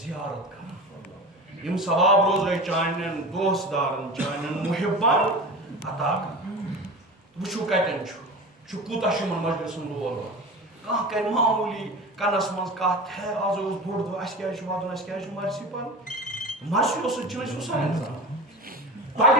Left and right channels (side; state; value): both; normal; correlation 0.31